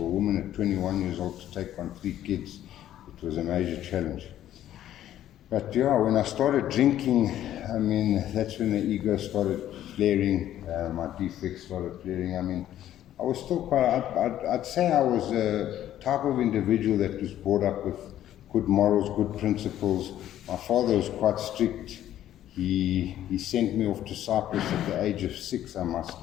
a woman at 21 years old to take on 3 kids, it was a major challenge. But when I started drinking, I mean, that's when the ego started flaring, my defects started flaring. I mean, I was still I'd say I was a type of individual that was brought up with good morals, good principles. My father was quite strict. He sent me off to Cyprus at the age of 6, I must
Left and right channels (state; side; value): quieter; right; 12.1 dB